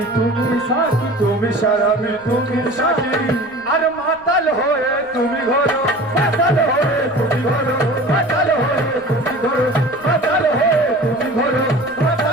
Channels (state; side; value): noise; left; rumble, 28 dB below the sound